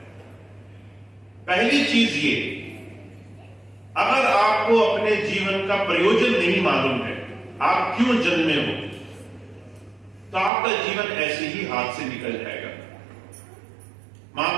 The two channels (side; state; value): left; drops out; at 10.5 s